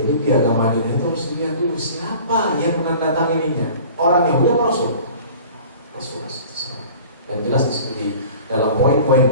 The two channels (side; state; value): both; inverted; correlation -0.44